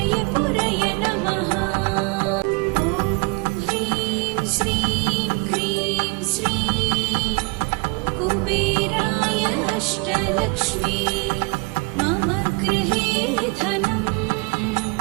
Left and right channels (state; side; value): quieter; left; 29.2 dB